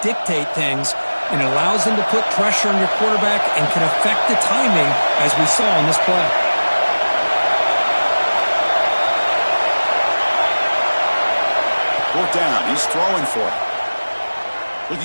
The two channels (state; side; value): inverted; both; correlation -1.00